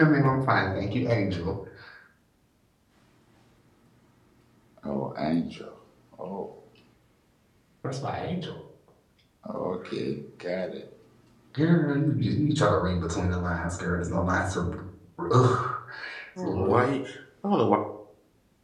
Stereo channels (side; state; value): both; identical; correlation 1.00